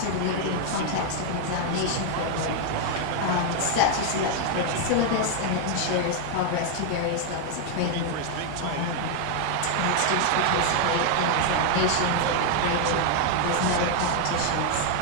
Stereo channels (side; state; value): both; different; correlation 0.00